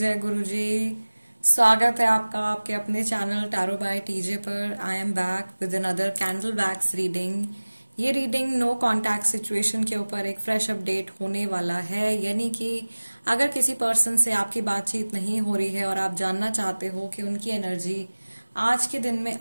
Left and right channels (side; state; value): both; inverted; correlation -1.00